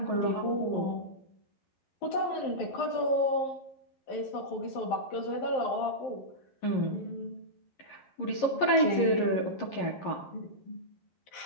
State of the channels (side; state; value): right; late; 11 ms